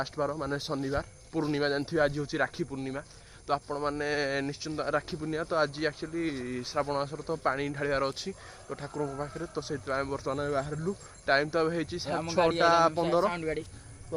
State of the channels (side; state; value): both; identical; correlation 1.00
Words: बार माने शनिवार पूर्णिमा जानते आज हूँ राखी पूर्णिमा। तो आपण मैंने निश्चिंत राखी पूर्णिमा तो आज एक्चुअली श्रावण मासर तो पानी ढालियार अच्छी तो ठाकुर पाखे तो से बर्तमान बाहरलु टाइम तो अब 6:15